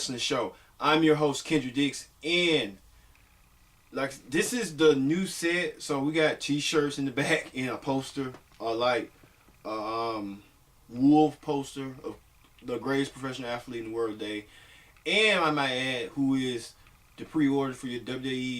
Show. I'm your host Kendra Dix, and this is the new set. So we got T-shirts in the back and a poster, wolf poster of the greatest professional athlete in the world today, and I might add, who is the pre-order for your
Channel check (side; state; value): both; identical; correlation 1.00